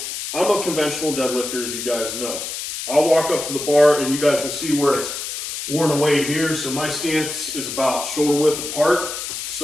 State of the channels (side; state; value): left; noise; hiss, 6 dB below the sound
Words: I'm a conventional deadlifter, as you guys know. I'll walk up to the bar and you guys will see where it's worn away here. So my stance is about shoulder width apart.